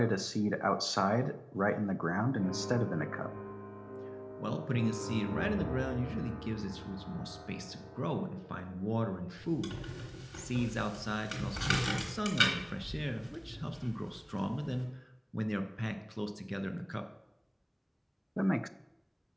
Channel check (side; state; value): both; identical; correlation 1.00